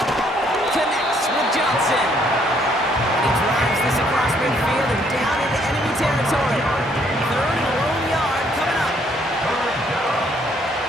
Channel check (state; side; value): normal; both; correlation 0.67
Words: Connects with Johnson. And he drives this across midfield and down into enemy territory. Third and a lone yard coming up.